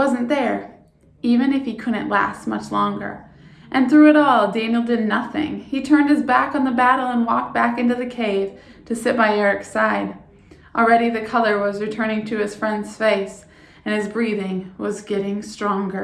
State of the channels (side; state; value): both; identical; correlation 1.00